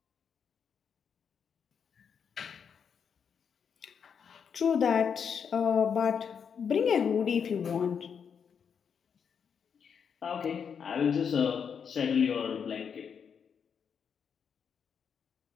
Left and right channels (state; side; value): quieter; right; 7.0 dB